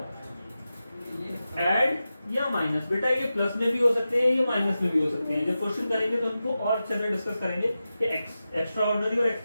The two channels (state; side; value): inverted; both; correlation -0.92